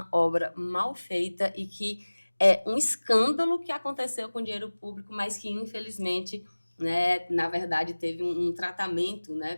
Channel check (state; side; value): inverted; both; correlation -1.00